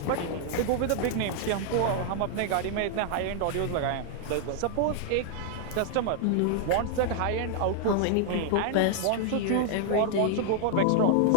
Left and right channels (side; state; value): both; different; correlation 0.00